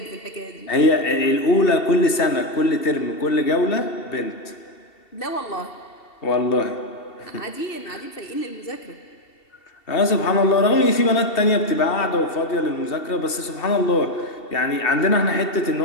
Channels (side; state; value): right; late; 2.7 ms